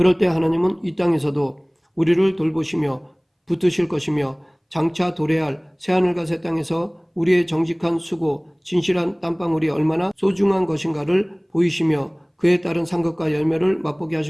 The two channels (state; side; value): identical; both; correlation 1.00